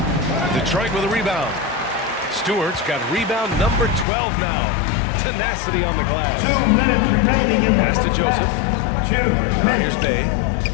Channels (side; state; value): right; drops out; at 4.0 s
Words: Detroit with a rebound. Stewart's got rebound number 12 now. Tenacity on the glass. 2 minutes remaining in the Pass to first Joseph. half. 2 Now minutes. here's Bay.